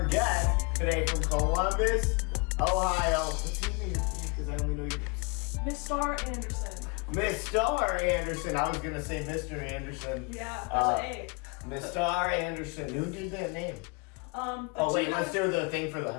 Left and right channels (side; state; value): right; quieter; 31.8 dB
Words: guest today from Columbus, Ohio. What's his name? Because I only know your Mistar Anderson. Mistar Anderson. I was going to say Mr. Anderson. Yeah, there's an A. Mistar Anderson. Who did that name? Oh, wait, let's do the thing for the...